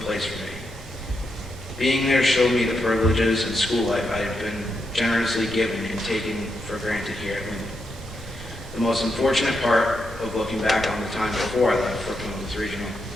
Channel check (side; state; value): right; noise; rumble, 15 dB below the sound